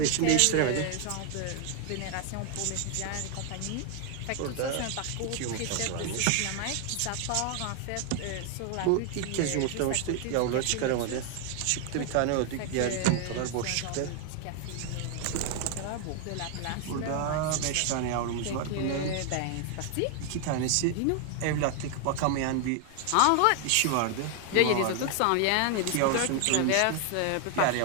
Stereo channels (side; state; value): both; different; correlation 0.00